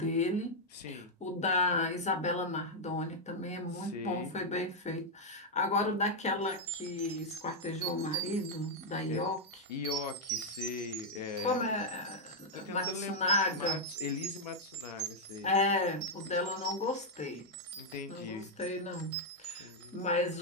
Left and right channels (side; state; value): both; normal; correlation -0.02